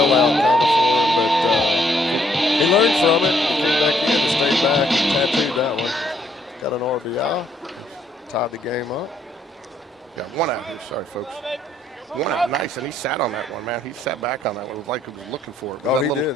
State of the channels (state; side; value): normal; both; correlation 0.69